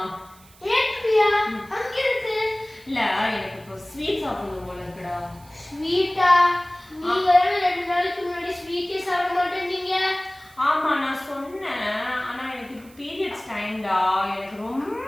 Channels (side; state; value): right; noise; hiss, 26 dB below the sound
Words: ஏட்பியா அங்க இருக்கு. இல்ல, எனக்கு இப்போ ஸ்வீட் சாப்பிடணும் போல இருக்குடா. ஸ்வீட்டா? நீங்க 2 நாளைக்கு முன்னாடி ஸ்வீட்டே சாப்பிட மாட்டேன்னீங்க. ஆமா, நான் சொன்னேன். ஆனா எனக்கு இப்போ பீரியட்ஸ் டைம்டா, எனக்கு